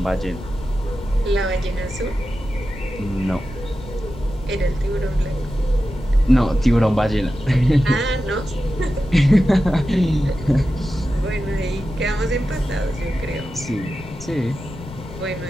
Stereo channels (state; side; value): noise; left; rumble, 14 dB below the sound